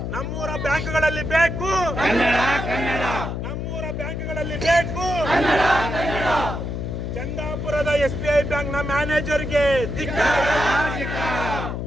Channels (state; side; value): noise; left; hum, 4 dB below the sound